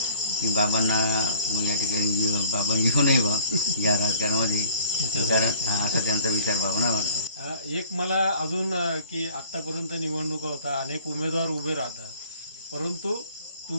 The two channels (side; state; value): both; inverted; correlation -0.53